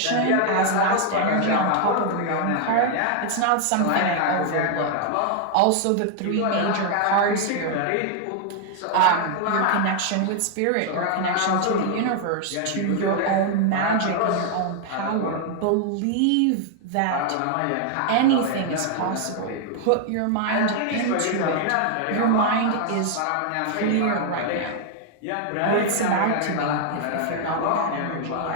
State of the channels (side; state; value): both; different; correlation 0.00